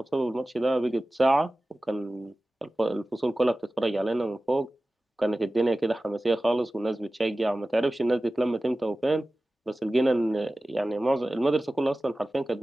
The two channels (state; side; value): normal; both; correlation 0.96